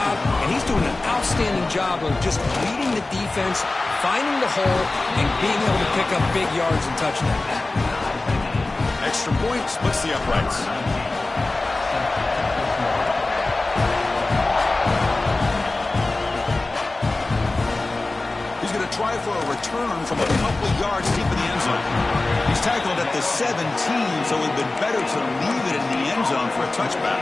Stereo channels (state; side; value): quieter; right; 3.1 dB